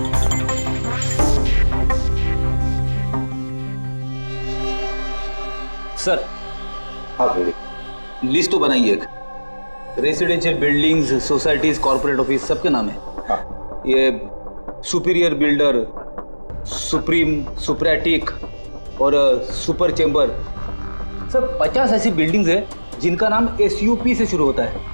सर, हाँ लिस्ट तो बनाइए। एक residential buildings, societies, corporate office सबके नाम है। हाँ। ये सुपीरियर बिल्डर, सुप्रीम, सुप्रेटिक और सुपर चेंबर, सब 50 ऐसी बिल्डिंग्स है जिनका नाम SUP से शुरू होता है,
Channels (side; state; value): both; inverted; correlation -1.00